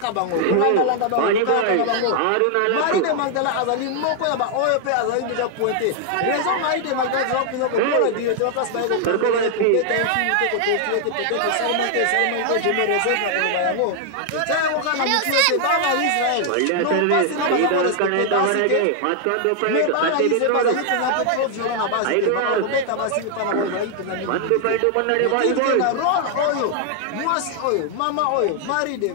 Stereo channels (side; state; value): both; different; correlation 0.00